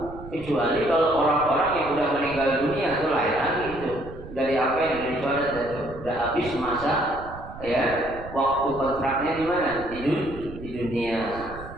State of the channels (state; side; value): noise; right; rumble, 14 dB below the sound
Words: Kecuali kalau orang-orang yang sudah meninggal dunia itu lain lagi itu. Dari apa yang dicoret itu sudah habis masa, ya, waktu kontraknya di mana? Di dunia.